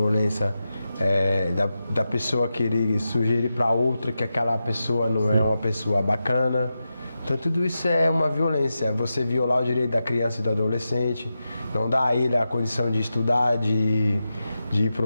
da pessoa querer sugerir para outra que aquela pessoa não é uma pessoa bacana. Então tudo isso é uma violência, você violar o direito da criança e do adolescente, não dar a ele a condição de estudar, de ir para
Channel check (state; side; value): inverted; both; correlation -0.90